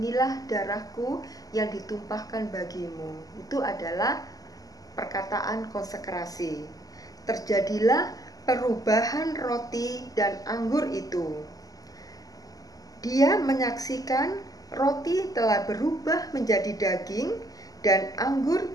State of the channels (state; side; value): late; right; 0.17 ms